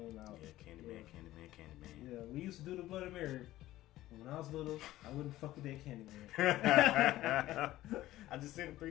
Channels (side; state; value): right; quieter; 15.5 dB